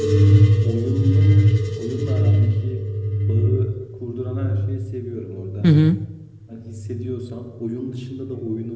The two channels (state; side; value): identical; both; correlation 1.00